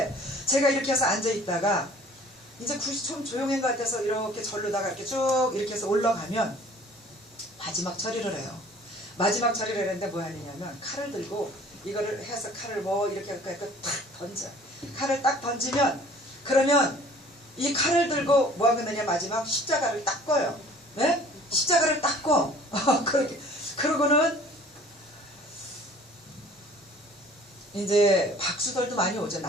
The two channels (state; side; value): normal; both; correlation 0.51